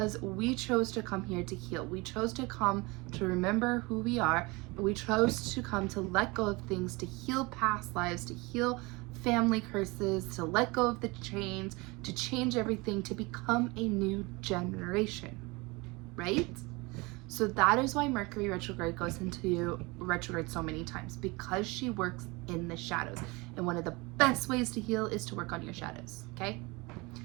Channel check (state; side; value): quieter; left; 25.1 dB